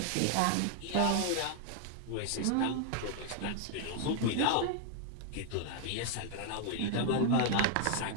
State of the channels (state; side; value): different; both; correlation 0.00